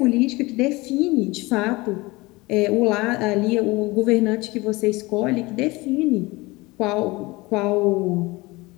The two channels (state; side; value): quieter; right; 22.5 dB